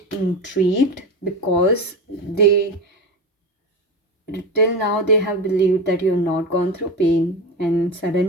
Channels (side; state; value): both; normal; correlation 0.22